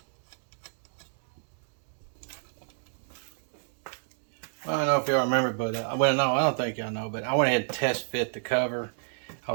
I don't know if y'all remember, but well, no, I don't think y'all know, but I went ahead and test fit the cover. I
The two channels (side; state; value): left; silent; digital silence